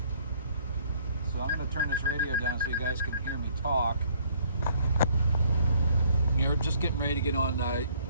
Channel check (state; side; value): inverted; both; correlation -0.62